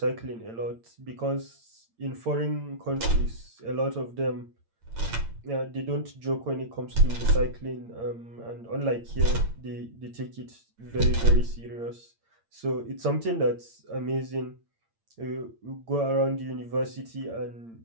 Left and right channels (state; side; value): late; left; 8.8 ms